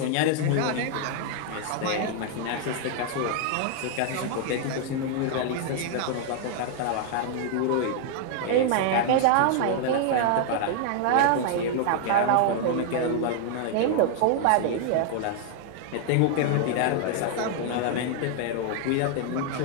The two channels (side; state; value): both; different; correlation 0.00